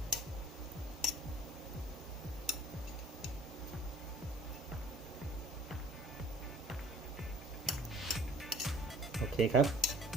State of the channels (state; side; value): normal; both; correlation 0.51